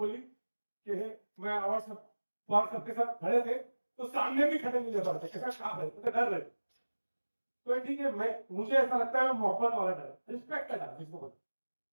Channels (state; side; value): inverted; both; correlation -1.00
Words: कि मैं अवार्ड सबके साथ खड़े थे तो सामने भी खड़े नहीं जा पाते, काम है तो डर रहे। तो ठीक है, मैं मुझे ऐसा लगता है मोहब्बत वाला डर, रिस्पेक्ट का डर जिसको बोलते।